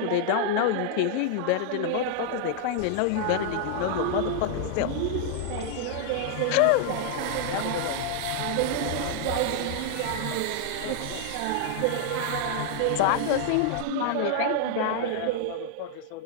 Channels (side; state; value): both; different; correlation -0.01